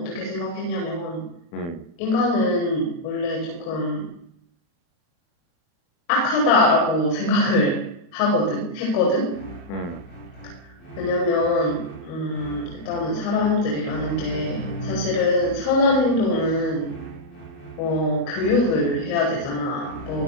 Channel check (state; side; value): late; right; 35 ms